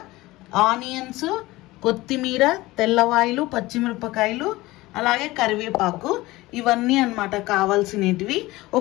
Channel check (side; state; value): right; quieter; 19.2 dB